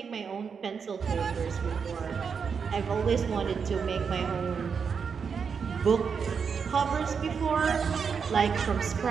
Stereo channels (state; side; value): quieter; left; 6.2 dB